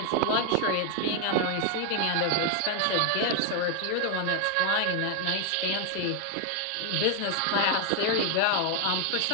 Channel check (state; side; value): different; both; correlation 0.00